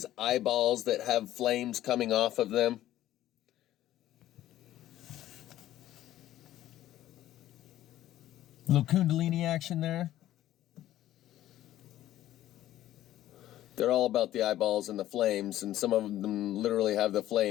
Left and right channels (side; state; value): right; quieter; 13.5 dB